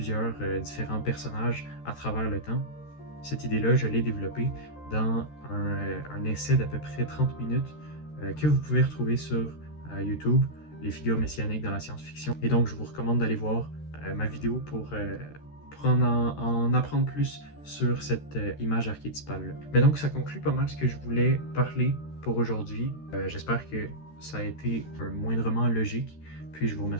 différents personnages à travers le temps, cette idée-là, je l'ai développée dans un essai d'à peu près 30 minutes que vous pouvez retrouver sur YouTube, les figures messianiques dans la science-fiction. Et donc, je vous recommande d'aller voir ma vidéo pour en apprendre plus sur cette image archétypale-là. Mais donc, ça conclut pas mal ce que je voulais parler pour aujourd'hui. J'espère que ça a été moindrement logique. Puis, je vous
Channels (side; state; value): right; late; 13 ms